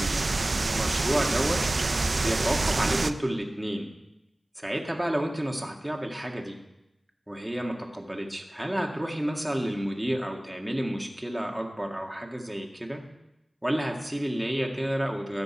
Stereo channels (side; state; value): both; normal; correlation 0.98